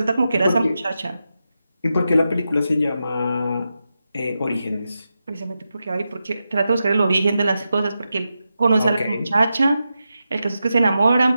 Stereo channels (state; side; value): inverted; both; correlation -0.89